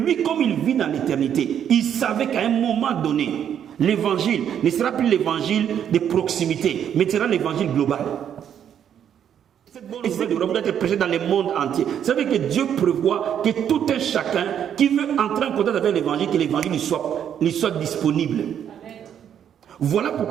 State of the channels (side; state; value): left; quieter; 9.1 dB